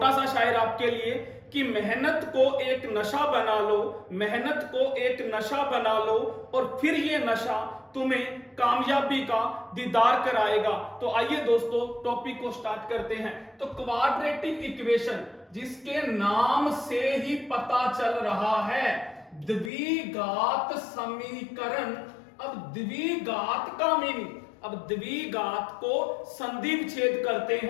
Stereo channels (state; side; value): drops out; right; at 19.7 s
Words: सा शायर आपके लिए कि मेहनत को एक नशा बना लो, मेहनत को एक नशा बना लो और फिर ये नशा तुम्हें कामयाबी का दीदार कराएगा। तो आइए दोस्तों टॉपिक को स्टार्ट करते हैं। तो क्वाड्रेटिक इक्वेशन, जिसके नाम से ही पता चल रहा है द्विघात समीकरण। अब द्विघात का मीनिंग, अब द्विघात को संधि विच्छेद करते